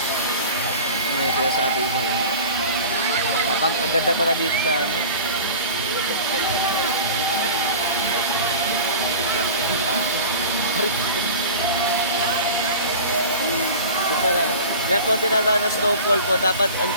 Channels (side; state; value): both; inverted; correlation -0.37